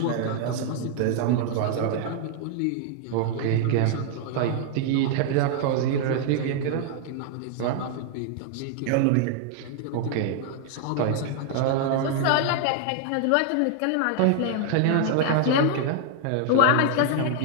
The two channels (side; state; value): both; different; correlation 0.00